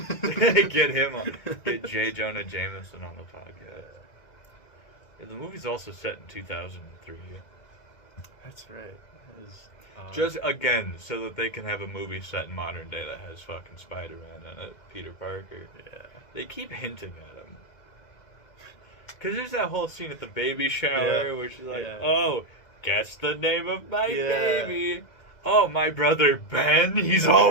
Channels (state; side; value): late; right; 2.0 ms